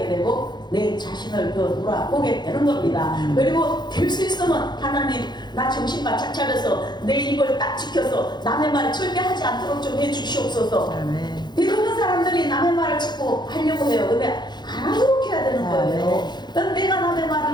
되고 내 자신을 더 돌아보게 되는 겁니다. 그리고 될 수 있으면 하나님 나 정신 바짝 차려서 내 입을 딱 지켜서 남의 말을 절대 하지 않도록 좀 해주시옵소서. 대부분 사람들이 남의 말을 자꾸 하려고 해요. 근데 안 하도록 해야 되는 거예요. 그럼 내가 남의 말을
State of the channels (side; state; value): right; late; 0.21 ms